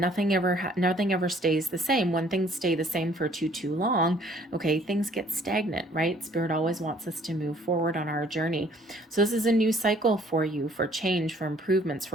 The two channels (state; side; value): normal; both; correlation 0.59